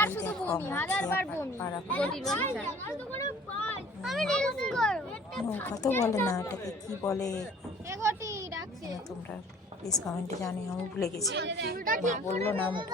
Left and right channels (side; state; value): both; normal; correlation 0.51